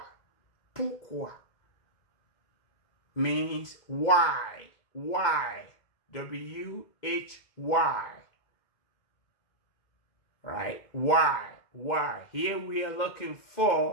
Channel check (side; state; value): right; late; 2.0 ms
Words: Pourquoi means why. Why? W-H-Y. Right? Why? Why? Here we are looking